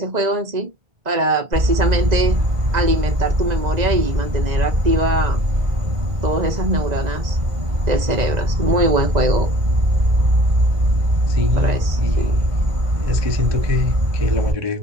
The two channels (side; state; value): left; late; 2.0 ms